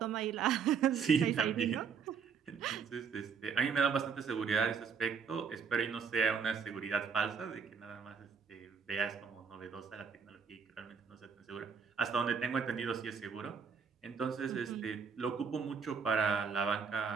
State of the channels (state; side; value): quieter; left; 6.2 dB